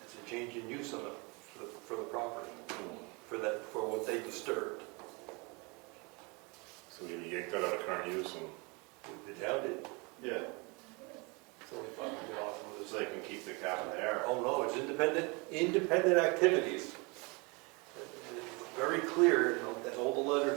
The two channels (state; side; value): quieter; left; 29.0 dB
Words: a change in use on for the property, for what they disturbed. So we yanked that out of current use and The town did, Yeah, it's only $500 for so they can keep the cabin there. Oh, no, it's independent activities. It's very clear, you know, that all the